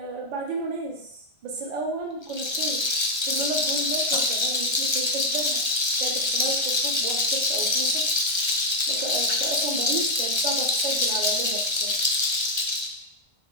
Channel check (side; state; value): left; late; 1.3 ms